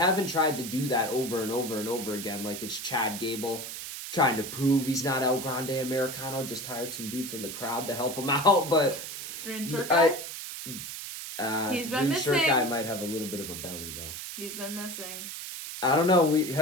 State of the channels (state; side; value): noise; right; hiss, 8 dB below the sound